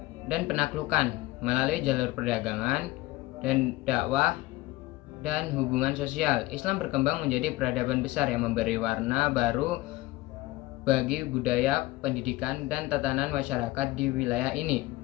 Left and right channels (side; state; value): right; quieter; 19.0 dB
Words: dan penaklukan, melalui jalur perdagangan dan dakwah dan hubungan sosial. Islam berkembang menjadi peradaban besar yang memberi warna baru bagi budaya, pendidikan, dan tatanan masyarakat di wilayah ini.